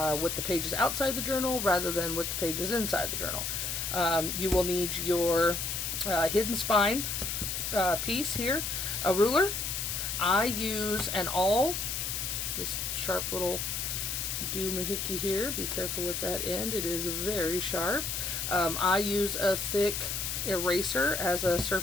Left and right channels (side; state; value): left; noise; hiss, 2 dB below the sound